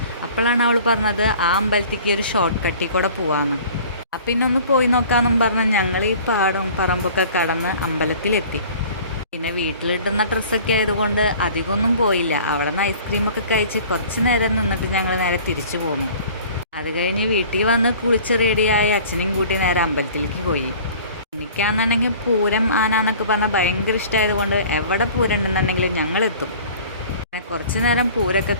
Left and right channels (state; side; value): inverted; both; correlation -0.47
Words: അപ്പോഴാണ് അവൾ പറഞ്ഞത് ആ അമ്പലത്തേക്ക് ഒരു ഷോർട്ട് കട്ടിൽ കൂടെ പോവാമെന്ന്. അപ്പം പിന്നെ ഒന്ന് പോയി നോക്കാമെന്നും പറഞ്ഞ് ഞങ്ങൾ ഈ പാടവും പറമ്പൊക്കെ കടന്ന് അമ്പലത്തിലെത്തി. പിന്നെ വീട്ടിലിട്ടുന്ന ഡ്രസ്സൊക്കെ ആയതുകൊണ്ട് അധികമൊന്നും പോയില്ല. അവിടെ നിന്ന് ഐസ്ക്രീമൊക്കെ കഴിച്ച് കുറച്ച് നേരം നിന്നിട്ട് ഞങ്ങൾ നേരെ തിരിച്ചു പോന്നു. അത് കഴിഞ്ഞ് വീട്ടിൽ വന്ന് കുളിച്ച് റെഡിയായി അച്ഛനെയും കൂട്ടി നേരെ അമ്പലത്തിലേക്ക് പോയി. എനിക്കാണെന്നുണ്ടെങ്കിൽ പൂരം ആന എന്നൊക്കെ പറഞ്ഞാൽ ഭയങ്കര ഇഷ്ടമായതുകൊണ്ട് എവിടെ പൂരം ഉണ്ടെന്നുണ്ടെങ്കിലും ഞങ്ങളെത്തും. പിന്നെ കുറച്ച് നേരം പൂരമൊക്കെ